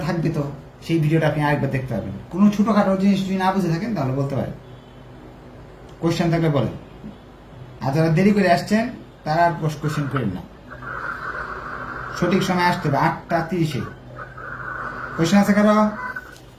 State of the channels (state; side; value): identical; both; correlation 1.00